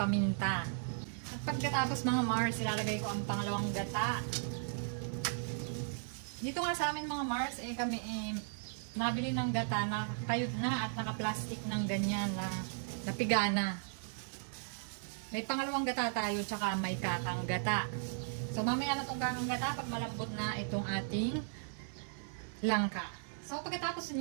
At pagkatapos mga Mars, ilalagay ko ang pangalawang gata. Dito nga sa amin mga Mars, kami nabili ng gata na kayod na at naka-plastic ng ganyan na napigana. May pangalawang gata tayo, tsaka may kakang gata. So, mamaya na itong kakang gata pag malambot na itong ating langka. So, pagkatapos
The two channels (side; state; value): left; silent; digital silence